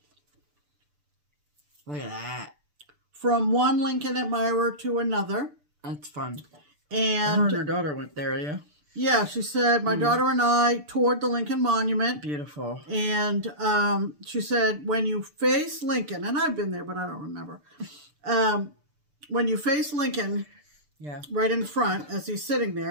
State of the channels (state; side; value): late; left; 6.8 ms